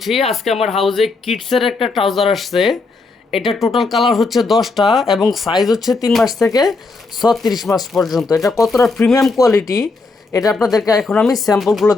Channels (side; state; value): right; quieter; 3.8 dB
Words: আজকে আমার হাউজে কিডসের একটা ট্রাউজার আসছে। এটা টোটাল কালার হচ্ছে 10টা এবং সাইজ হচ্ছে 3 মাস থেকে 36 মাস পর্যন্ত। এটা কতটা প্রিমিয়াম কোয়ালিটি এটা আপনাদেরকে এখন আমি স্যাম্পলগুলো